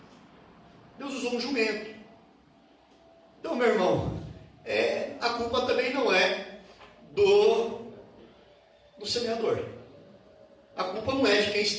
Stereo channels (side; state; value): both; identical; correlation 1.00